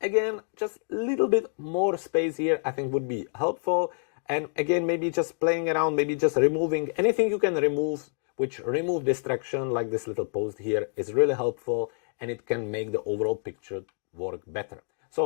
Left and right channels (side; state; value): right; silent; digital silence